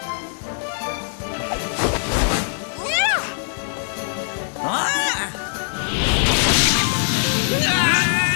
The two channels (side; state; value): right; silent; 65 dB below the other